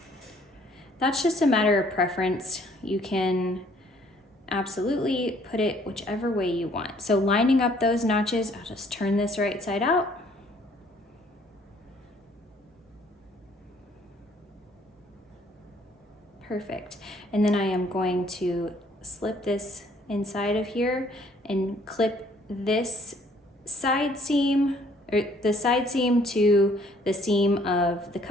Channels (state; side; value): normal; both; correlation 0.61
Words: That's just a matter of preference. You can absolutely put it whichever way you want. So lining up those notches, I'll just turn this right side out. Perfect. And then I am going to slip this inside of here and clip this side seam, or the side seam to the seam of the